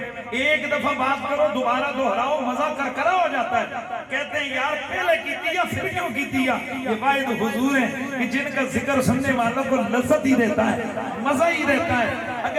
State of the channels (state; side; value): identical; both; correlation 1.00